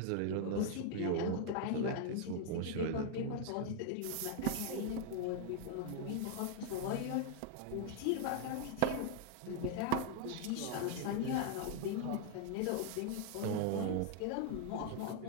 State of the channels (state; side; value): different; both; correlation 0.00